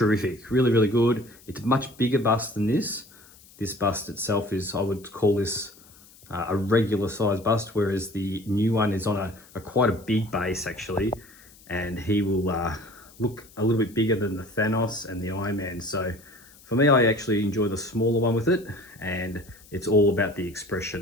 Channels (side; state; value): left; noise; hiss, 24 dB below the sound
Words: really, really good. It's a much bigger bust than this. This bust itself is, I would call this a regular size bust, whereas the new one is on a quite a big base actually, and he will look a little bit bigger than the Thanos and the Iron Man. So for me, I actually enjoy the smaller one with it, and it's all about the